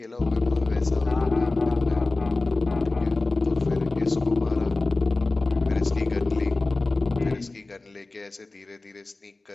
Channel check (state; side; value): quieter; right; 3.2 dB